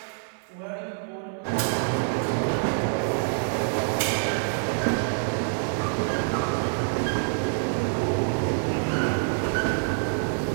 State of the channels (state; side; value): silent; left; digital silence